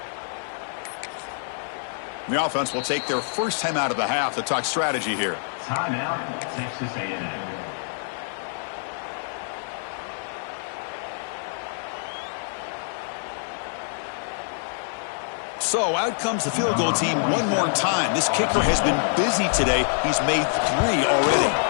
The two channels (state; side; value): silent; right; digital silence